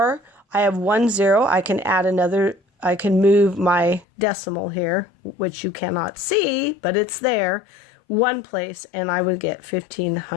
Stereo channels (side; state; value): right; drops out; at 4.0 s